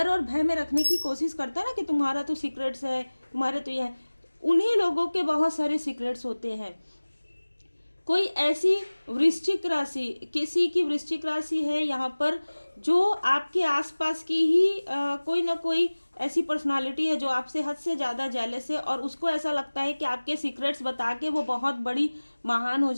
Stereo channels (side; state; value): both; inverted; correlation -1.00